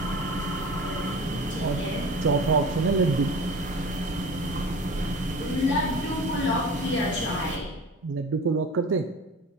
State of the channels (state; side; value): normal; both; correlation 0.36